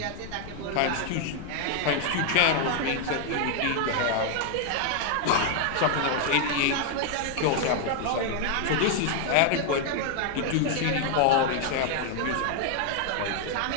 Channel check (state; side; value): different; both; correlation 0.00